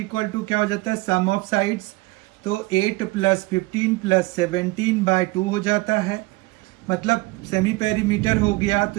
टू क्या हो जाता है, सम ऑफ साइड्स। तो 8 + 15 + 17/2 हो जाता है, मतलब सेमी पेरीमीटर हो गया। तो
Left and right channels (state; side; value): quieter; left; 22.1 dB